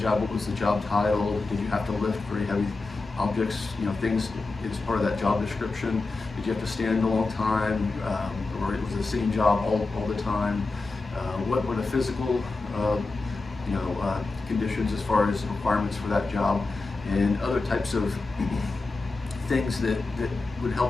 what was the job title, did you have to lift very heavy objects, things as part of that job description, did you have to stand a long time, or it was a sitting job all the time, what were the physical conditions as far as requirements for that job, and other types of things that would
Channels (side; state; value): right; quieter; 3.6 dB